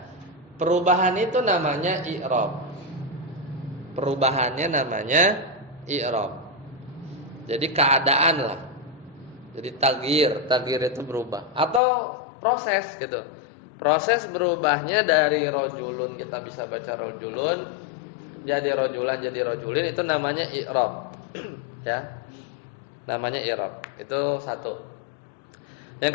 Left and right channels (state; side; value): drops out; right; at 11.8 s